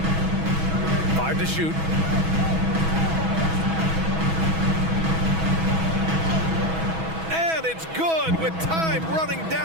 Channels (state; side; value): late; left; 6.2 ms